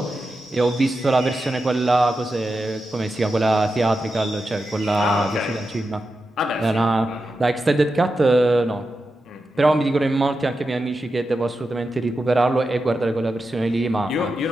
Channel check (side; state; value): both; normal; correlation 0.90